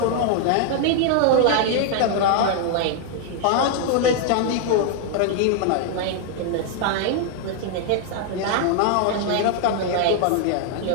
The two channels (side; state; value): both; different; correlation 0.00